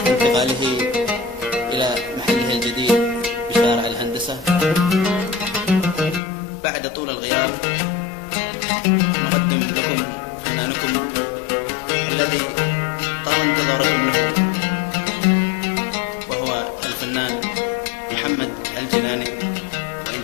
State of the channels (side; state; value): right; drops out; at 6.2 s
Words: إلى محله الجديد بشارع الهندسة بعد طول الغياب، نقدم لكم فنانكم الذي طال انتظاركم له، وهو الفنان محمد الجيلاني